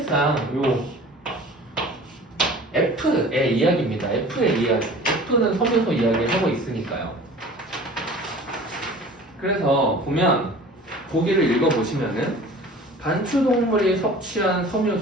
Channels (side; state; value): both; normal; correlation 0.43